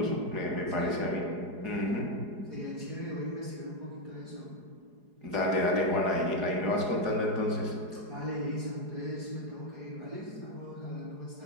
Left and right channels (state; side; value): late; left; 4.8 ms